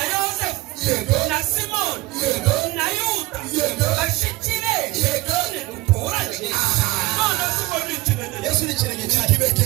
Yosefu Yego. na Simoni Yego. na Yuda Yego. bashiki be Yego. ntiduturanye. None si ngo ni ikinege. Yesu ni ikirenge cyane.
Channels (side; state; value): left; quieter; 20.4 dB